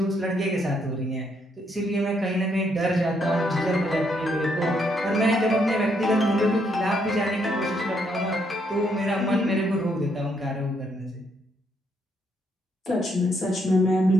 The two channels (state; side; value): normal; both; correlation 0.74